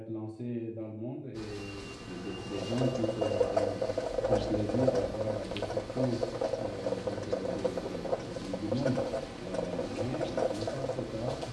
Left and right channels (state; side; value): identical; both; correlation 1.00